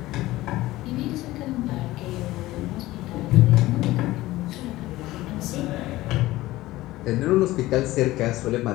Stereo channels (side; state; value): right; quieter; 17.4 dB